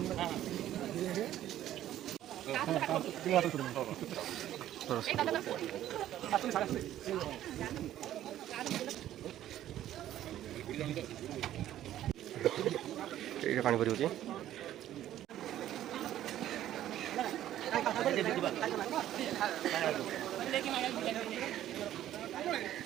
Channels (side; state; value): left; quieter; 12.5 dB